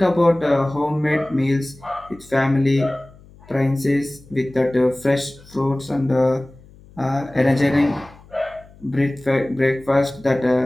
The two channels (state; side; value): noise; left; hum, 24 dB below the sound